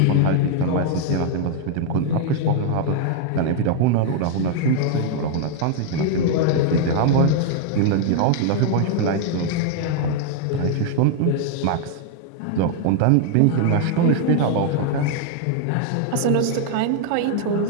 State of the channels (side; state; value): both; different; correlation 0.00